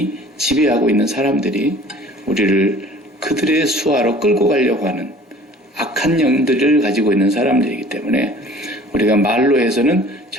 지배하고 있는 사람들이 우리를 그들의 수하로 끌고 가려고 하는 악한 영들을 가지고 있는 사람들이기 때문에 우리가 말로 해서는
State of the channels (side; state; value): both; normal; correlation 0.48